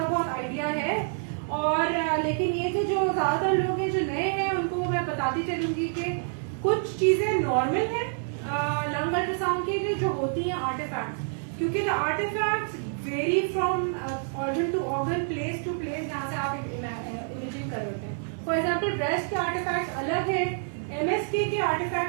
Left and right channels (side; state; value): left; silent; digital silence